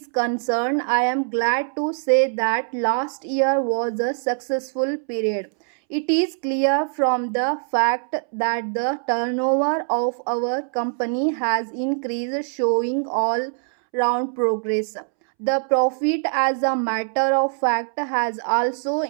concerned, I am glad to say that last year was a successful period. It is clear from the fact that the turnover of our company has increased, showing all round progress. The profit, as a matter of fact, has also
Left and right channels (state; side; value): silent; left; 64 dB below the other